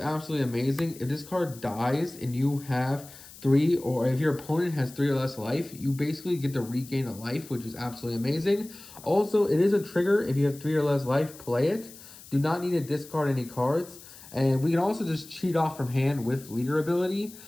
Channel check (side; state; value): left; noise; hiss, 18 dB below the sound